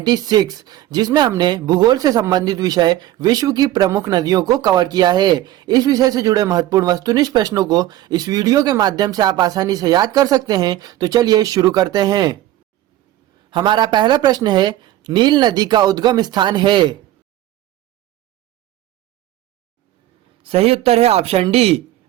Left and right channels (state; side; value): quieter; left; 14.2 dB